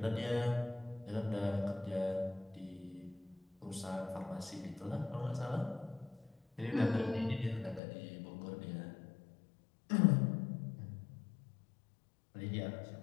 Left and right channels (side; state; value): right; drops out; at 7.8 s